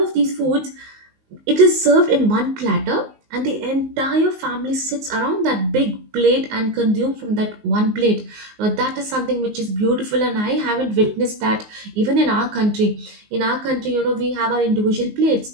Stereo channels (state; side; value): late; left; 19 ms